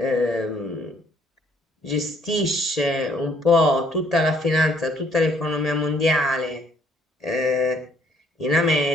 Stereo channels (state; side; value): normal; both; correlation 0.65